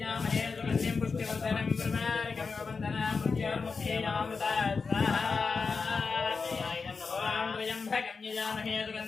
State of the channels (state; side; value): quieter; right; 4.8 dB